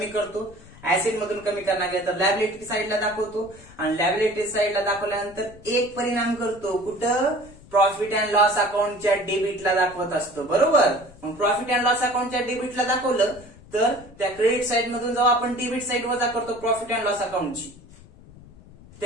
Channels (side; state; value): left; noise; rumble, 21 dB below the sound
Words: करतो. ऍसेट मधून कमी करणार गेलं तर लॅबिलिटी साईडला दाखवतो आणि लॅबिलिटी साईडला दाखवल्यानंतर एक परिणाम करतो कुठं? प्रॉफिट अँड लॉस अकाउंटच्या डेबिटला दाखवत असतो. बरोबर. मग प्रॉफिट अँड लॉस अकाउंटच्या डेबिटला दाखवलं तर त्या क्रेडिट साईड मधून जेव्हा आपण डेबिट साईड वजा करतो प्रॉफिट अँड लॉस अकाउंटची,